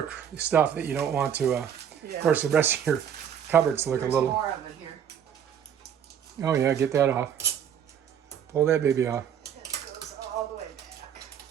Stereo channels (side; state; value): left; quieter; 8.8 dB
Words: stuff that you don't want to. Of course, the rest of your cupboards look There's a little. more of it here. Oh yeah, get that off. Pull that baby off. It goes all the way back.